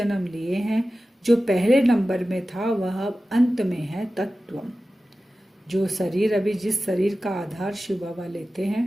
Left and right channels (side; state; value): both; normal; correlation 0.95